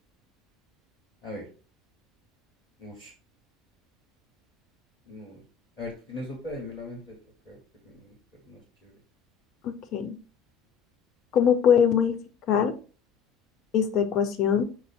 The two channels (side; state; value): right; quieter; 7.3 dB